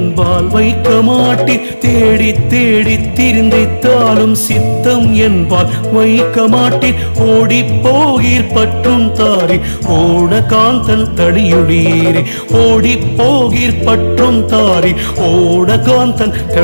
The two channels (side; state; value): both; inverted; correlation -1.00